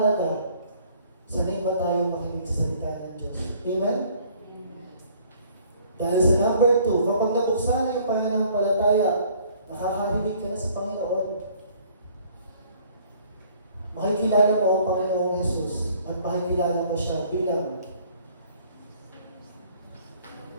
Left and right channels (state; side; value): inverted; both; correlation -0.58